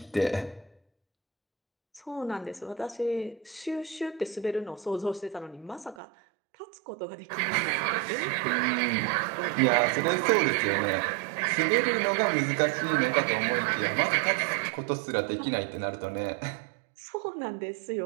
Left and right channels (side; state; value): left; drops out; at 6.0 s